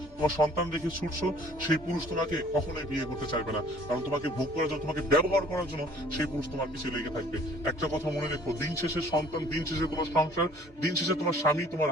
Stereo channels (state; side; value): normal; both; correlation 0.54